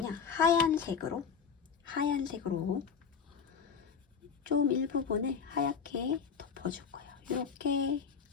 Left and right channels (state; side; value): quieter; right; 6.3 dB